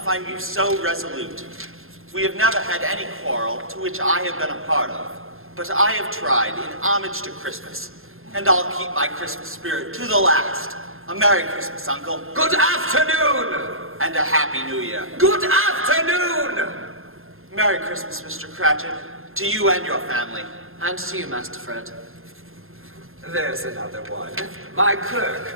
find you so resolute. We have never had any quarrel to which I have been a part of, but I have tried in homage to Christmas, and I'll keep my Christmas spirit to the last. A Merry Christmas, Uncle. Good afternoon. And a Happy New Year. Good afternoon. Merry Christmas, Mr. Cratchit, to you and your family. And to you, Master Fred. There's another one. My clerk,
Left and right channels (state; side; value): late; left; 0.60 ms